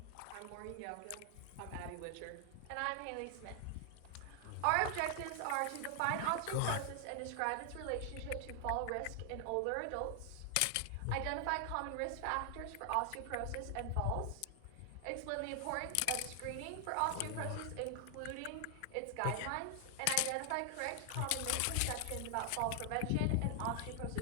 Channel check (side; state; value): both; different; correlation 0.00